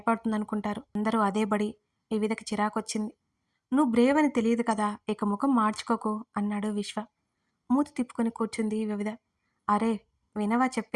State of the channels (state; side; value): identical; both; correlation 1.00